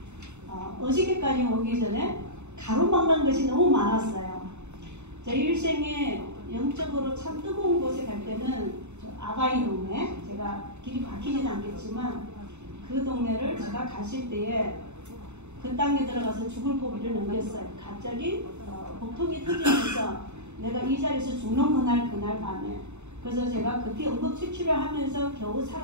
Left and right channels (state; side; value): late; left; 0.82 ms